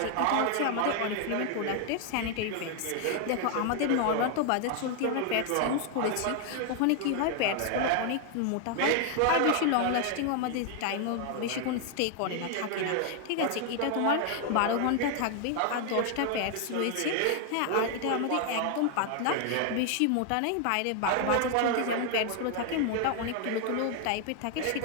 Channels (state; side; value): different; both; correlation 0.00